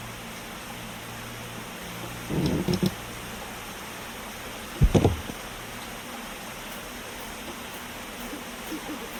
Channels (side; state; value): both; identical; correlation 1.00